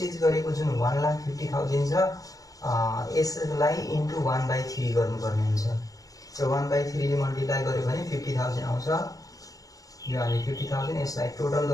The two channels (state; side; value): late; right; 0.17 ms